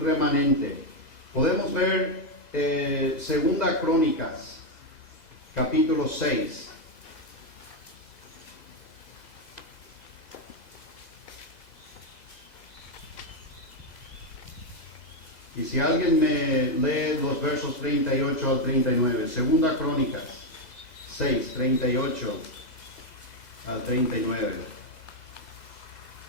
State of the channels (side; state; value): right; late; 2.0 ms